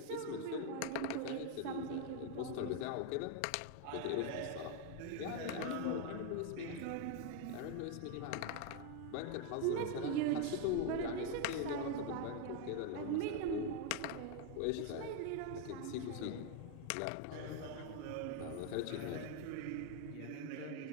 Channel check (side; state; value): both; different; correlation 0.01